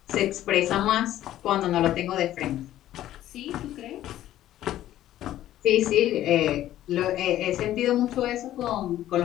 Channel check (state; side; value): quieter; right; 13.2 dB